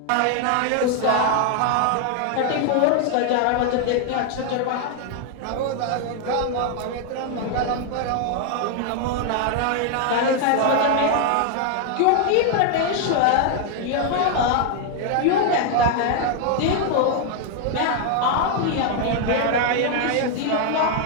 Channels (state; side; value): different; both; correlation 0.00